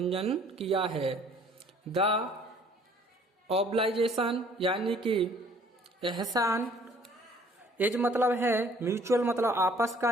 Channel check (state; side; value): normal; both; correlation 0.57